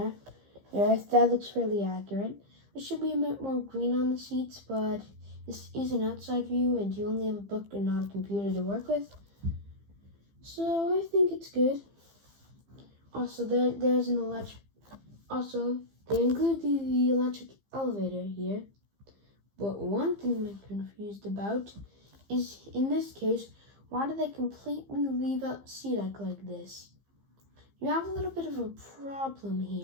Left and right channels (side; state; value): left; late; 15 ms